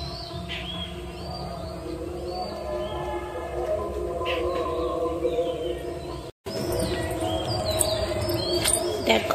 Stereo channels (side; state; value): both; identical; correlation 1.00